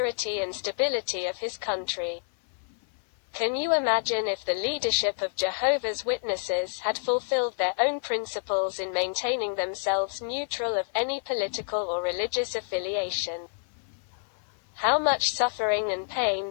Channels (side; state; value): right; silent; 58 dB below the other